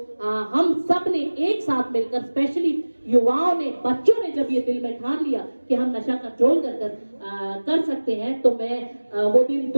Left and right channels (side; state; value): both; inverted; correlation -1.00